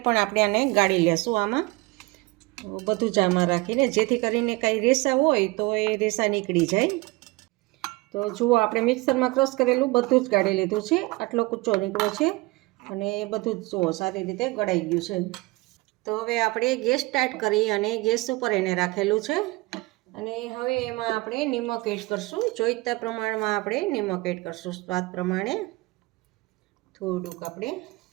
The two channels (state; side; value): quieter; left; 23.0 dB